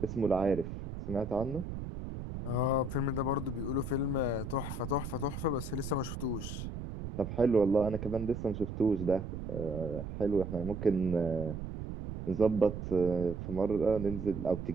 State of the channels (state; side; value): noise; right; rumble, 7 dB below the sound